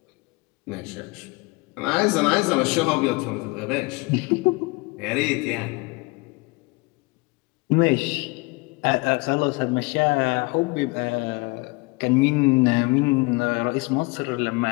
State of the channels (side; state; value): right; quieter; 26.2 dB